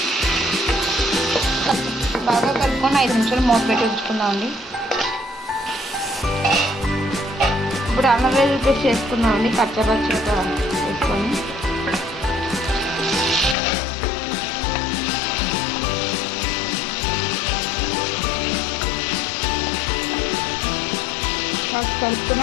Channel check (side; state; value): right; drops out; at 13.6 s